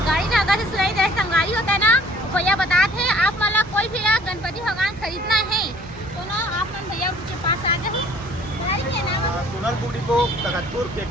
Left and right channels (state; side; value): normal; both; correlation 0.55